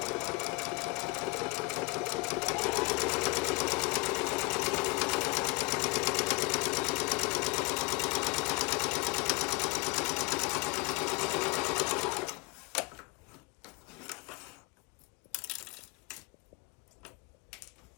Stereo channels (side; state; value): right; quieter; 25.6 dB